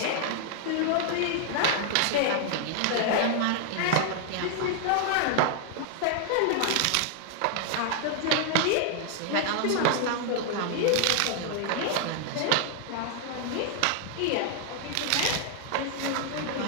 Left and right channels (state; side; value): different; both; correlation 0.00